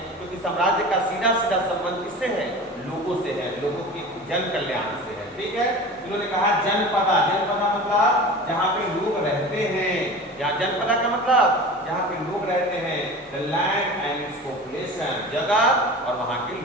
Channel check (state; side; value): normal; both; correlation 0.35